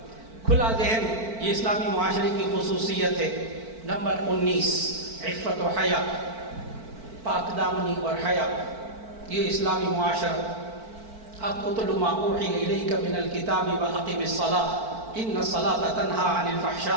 کھلا ذہن یہ اسلامی معاشرے کی خصوصیت ہے۔ نمبر 19 عفت و حیا، پاک دامنی اور حیا، یہ اسلامی معاشرہ۔ اب اتل ما اوحی الیک من الکتاب واقم الصلاۃ ان الصلاۃ تنہی عن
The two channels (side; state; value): left; late; 4.5 ms